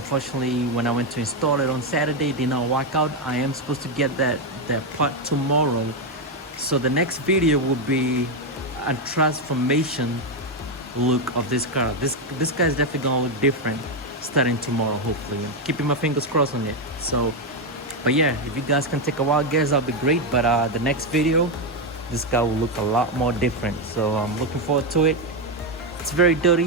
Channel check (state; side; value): normal; both; correlation 0.06